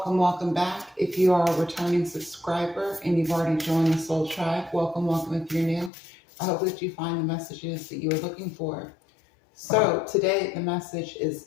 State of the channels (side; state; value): right; drops out; at 5.9 s